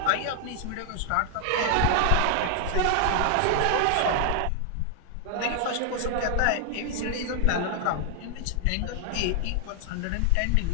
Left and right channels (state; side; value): different; both; correlation 0.00